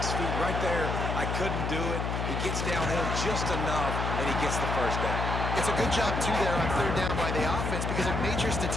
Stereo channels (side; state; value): left; noise; hum, 1 dB below the sound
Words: feet right there. I couldn't do it. He gets downhill just enough, and he gets the first down. It's a good job, too, there on third down by the offense because a major